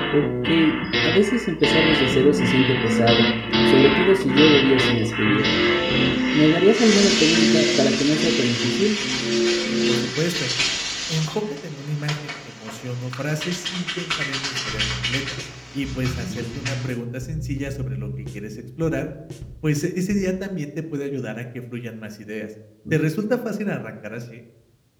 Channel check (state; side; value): identical; both; correlation 1.00